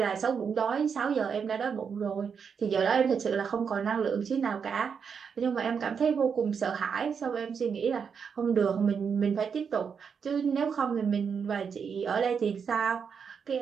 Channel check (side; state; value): left; quieter; 6.5 dB